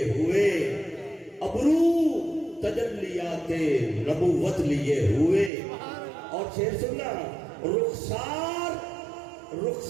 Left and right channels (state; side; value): drops out; left; at 5.5 s